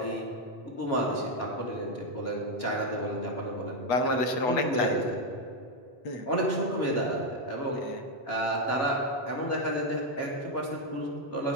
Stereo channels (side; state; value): right; late; 8.2 ms